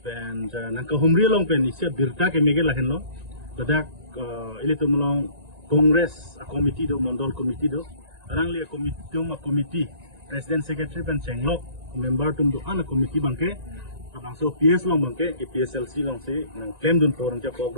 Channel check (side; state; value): left; late; 1.9 ms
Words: nang ka Humri long pen isya birta ke mege lahen lo adak ili tum long Congress committee do Mondol committee do arang li committee President Secretary pen cenglok member tum do ana committee bangke abang so PS long bangke ke PSLC long si nang claim dun porang cha pok